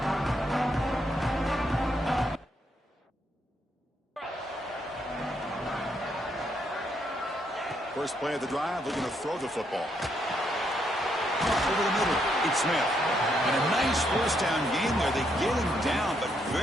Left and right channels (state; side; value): normal; both; correlation 0.76